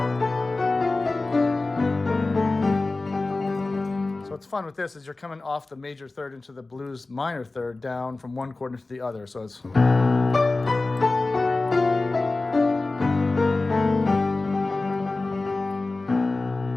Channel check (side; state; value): right; quieter; 3.3 dB